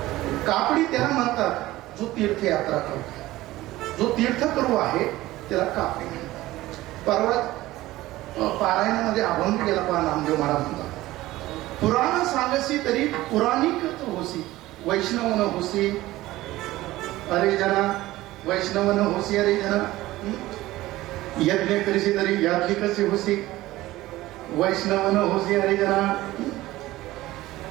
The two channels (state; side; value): quieter; left; 17.1 dB